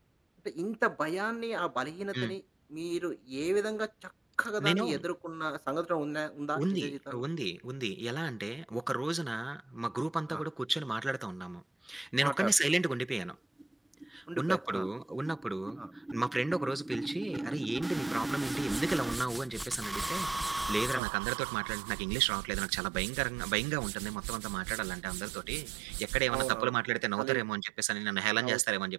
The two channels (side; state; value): left; drops out; at 21.0 s